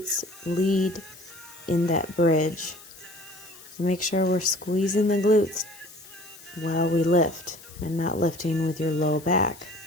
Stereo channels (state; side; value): noise; left; hiss, 19 dB below the sound